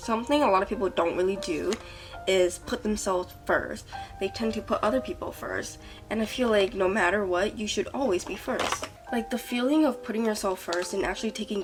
a lot of people don't really do is put themselves first. They tend to put other people first, and I feel like no matter what, you should always be first. Like, the feeling of putting yourself first and actually taking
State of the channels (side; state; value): both; identical; correlation 1.00